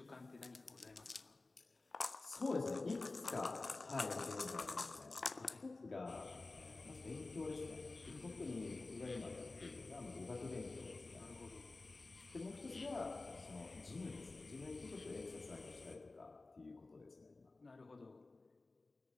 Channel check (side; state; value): right; quieter; 3.3 dB